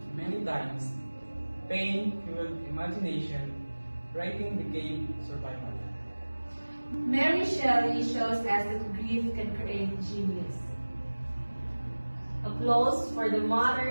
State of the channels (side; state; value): both; inverted; correlation -1.00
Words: Many times, pain fueled imagination, writing became survival. Mary Shelley shows us that grief can create genius. Applause for the